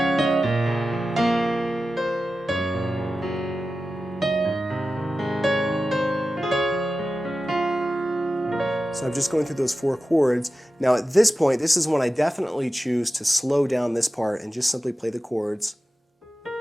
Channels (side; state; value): both; normal; correlation 0.94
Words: So I'm just going through those 4 chords. Now at this point, this is when I definitely choose to slow down this part and just simply play the chords.